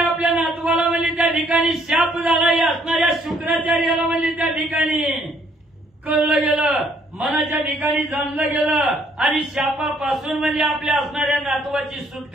आपल्या नातवाला म्हणजे त्या ठिकाणी शाप झाला. या असणाऱ्या शुक्राचार्याला म्हणजे त्या ठिकाणी कळलं गेलं, मनाच्या ठिकाणी जाणलं गेलं आणि शापापासून म्हणजे आपल्या असणाऱ्या नातवाची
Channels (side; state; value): both; normal; correlation 0.66